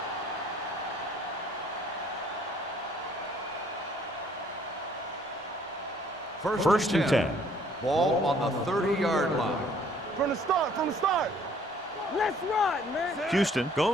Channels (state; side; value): normal; both; correlation 0.60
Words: First and 10. Ball on the 30-yard line. From the start. Let's run, man. Houston